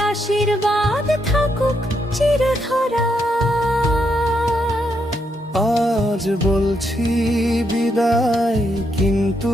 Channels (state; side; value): normal; both; correlation 0.79